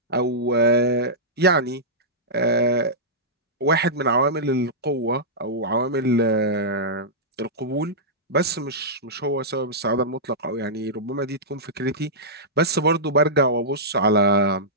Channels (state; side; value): normal; both; correlation -0.14